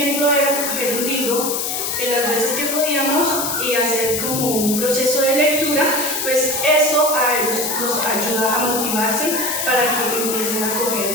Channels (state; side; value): noise; left; hiss, 2 dB below the sound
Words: era coger un libro en las veces que podíamos y hacer como un proceso de lectura, pues eso a ellos nos ayuda a motivarse para que empiecen a coger